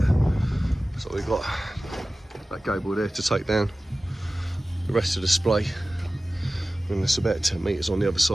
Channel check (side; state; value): both; normal; correlation 0.97